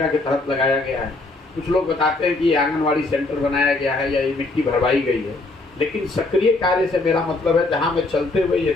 के तहत लगाया गया है, कुछ लोग बताते हैं कि ये आंगनवाड़ी सेंटर बनाया गया है या ये मिट्टी भरवाई गई है, लेकिन सक्रिय कार्य से मेरा मतलब है जहाँ मैं चलते हुए ये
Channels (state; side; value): quieter; right; 3.2 dB